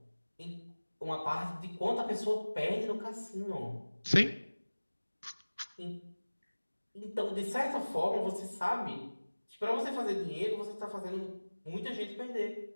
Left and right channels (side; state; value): both; inverted; correlation -1.00